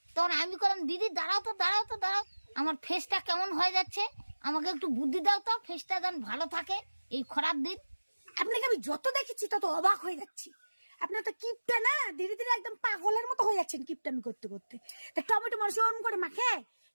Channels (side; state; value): both; inverted; correlation -1.00